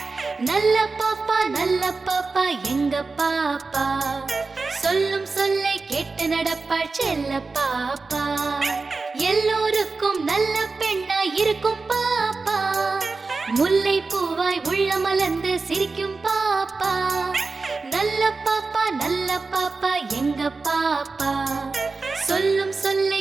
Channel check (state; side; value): quieter; left; 4.0 dB